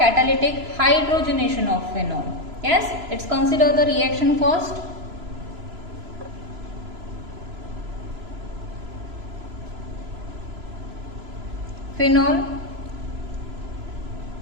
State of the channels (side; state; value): left; late; 3.0 ms